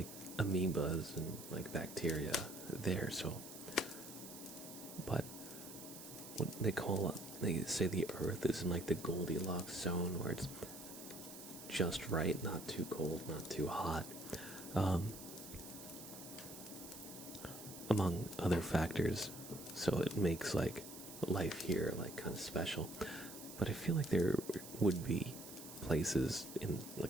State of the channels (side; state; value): right; noise; hiss, 13 dB below the sound